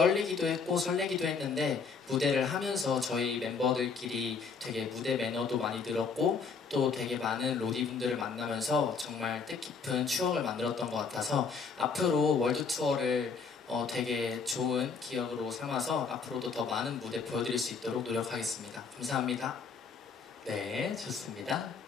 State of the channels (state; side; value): quieter; right; 5.2 dB